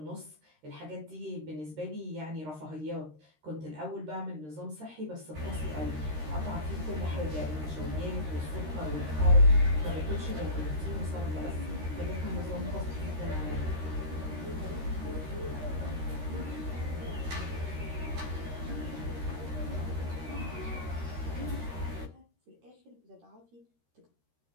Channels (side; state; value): left; late; 13 ms